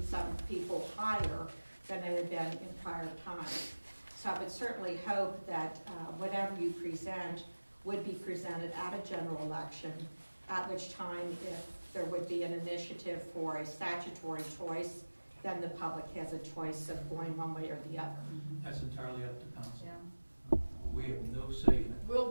people higher than it had been in prior times. So I would certainly hope that whatever you present would be presented at a general election, at which time if there would be an initiative for a statutory choice, then the public has a choice of going one way or the other. That's entirely up to council. yeah. We have no say in it.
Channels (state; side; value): inverted; both; correlation -1.00